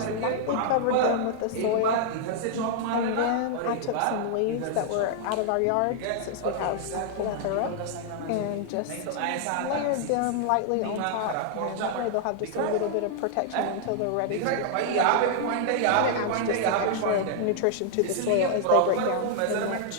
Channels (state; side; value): different; both; correlation -0.01